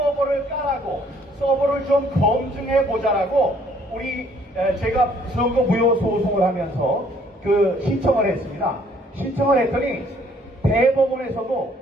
까라고 서버를 좀 검증해 보자라고 제가 선거 무효 소송을 하면서 그 신청을 했습니다. 신청을 했더니 대법원에서도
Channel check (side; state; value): both; normal; correlation 0.62